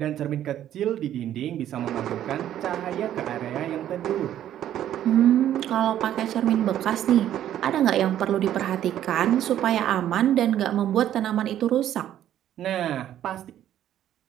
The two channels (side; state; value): left; quieter; 11.4 dB